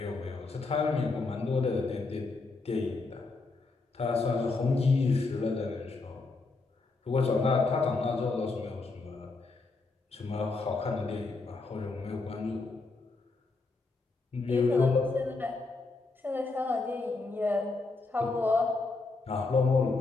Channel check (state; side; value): quieter; right; 3.8 dB